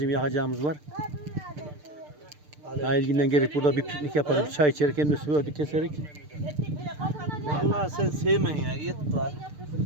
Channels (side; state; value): left; late; 6.7 ms